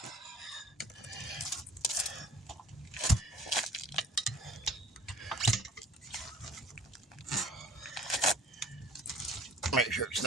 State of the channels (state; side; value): normal; both; correlation 0.50